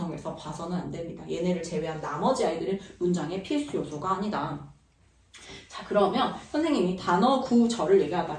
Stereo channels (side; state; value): both; identical; correlation 1.00